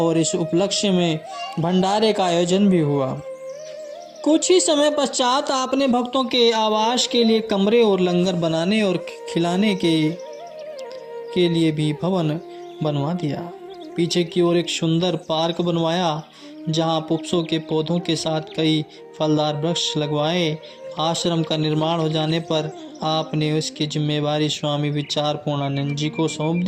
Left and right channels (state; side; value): identical; both; correlation 1.00